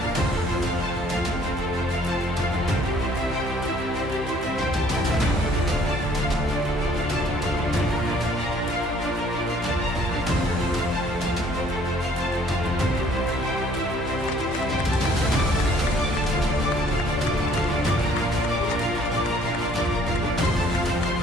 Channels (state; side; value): normal; both; correlation 0.59